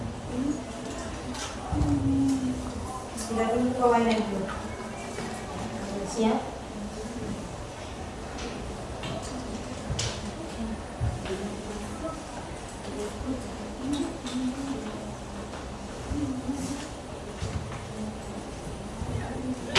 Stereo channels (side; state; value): both; identical; correlation 1.00